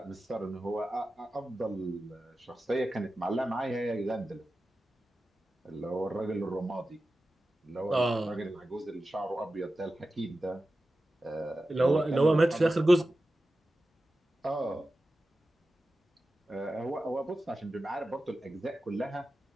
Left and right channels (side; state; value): both; normal; correlation 0.93